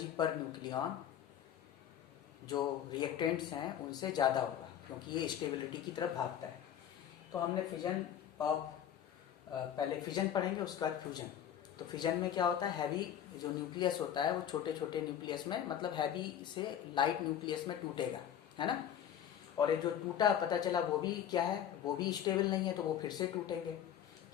पर न्यूक्लियन जो रिएक्टेंट्स हैं उनसे ज़्यादा होगा, क्योंकि ये स्टेबिलिटी की तरफ भागता है। तो हमने फिजन ऑफ पहले फिजन पढ़ेंगे, उसके बाद फ्यूजन। तो फिजन में क्या होता है, हैवी जो न्यूक्लियस होता है वो छोटे छोटे न्यूक्लियस में, मतलब हैवी से लाइट न्यूक्लियस में टूटेगा, है ना। और ये जो टूटा पता चला वो भी क्या है, वो भी स्टेबल नहीं है, तो वो फिर से टूटेंगे।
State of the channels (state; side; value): quieter; right; 9.8 dB